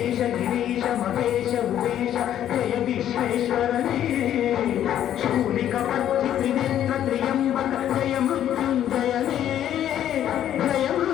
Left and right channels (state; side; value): quieter; right; 11.0 dB